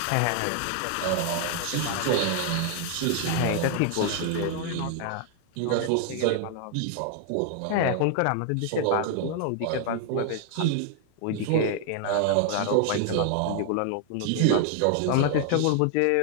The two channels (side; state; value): both; different; correlation 0.00